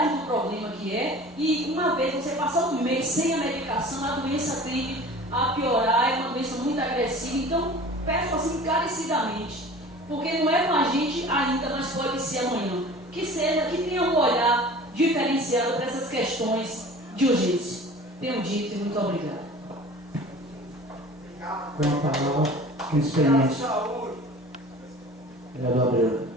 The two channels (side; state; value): both; normal; correlation 0.42